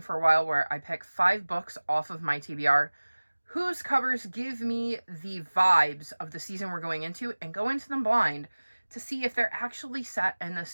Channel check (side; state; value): both; inverted; correlation -1.00